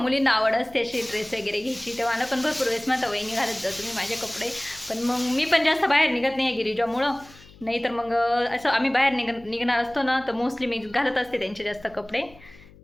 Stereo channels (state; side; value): noise; left; hum, 23 dB below the sound